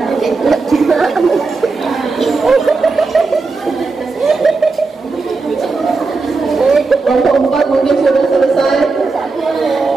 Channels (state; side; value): quieter; left; 4.1 dB